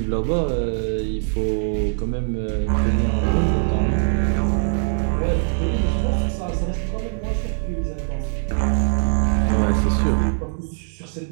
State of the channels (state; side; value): silent; left; digital silence